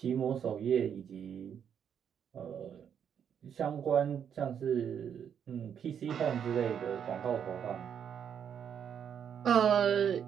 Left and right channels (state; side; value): quieter; left; 8.2 dB